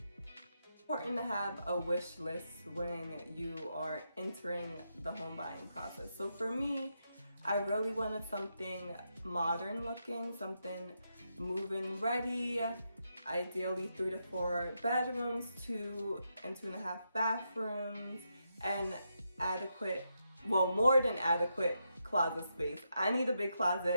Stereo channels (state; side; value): inverted; both; correlation -0.83